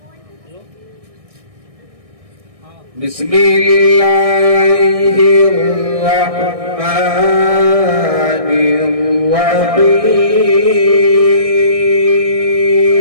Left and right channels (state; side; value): late; left; 1.6 ms